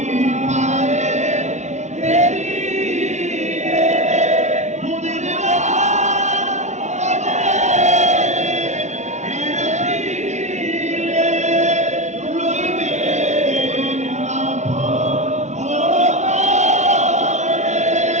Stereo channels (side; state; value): left; late; 0.33 ms